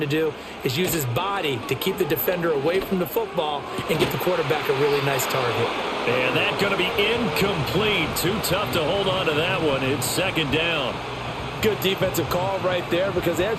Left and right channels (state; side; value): identical; both; correlation 1.00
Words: do is use his body to keep the defender away from the football and get the quarterback a really nice target. And that's going to be incomplete. Too tough to hold on to that one. It's second down. Good defensive call right there because they